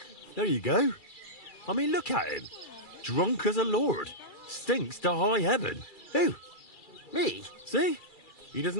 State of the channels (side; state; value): right; late; 2.3 ms